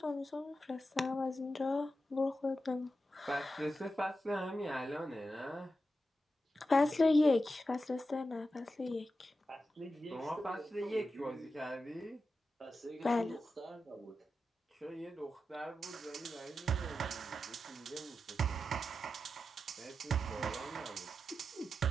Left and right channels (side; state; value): both; normal; correlation 0.90